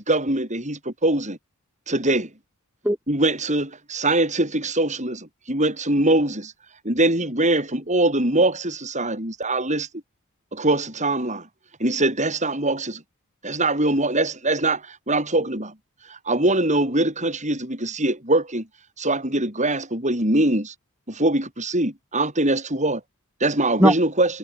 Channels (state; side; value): normal; both; correlation 0.30